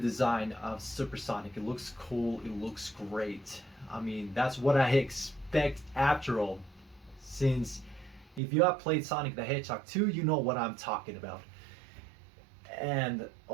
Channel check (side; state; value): left; drops out; at 8.4 s